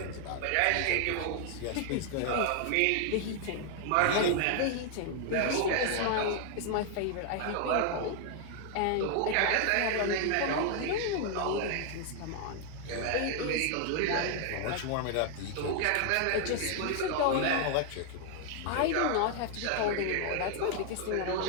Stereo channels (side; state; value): both; different; correlation 0.00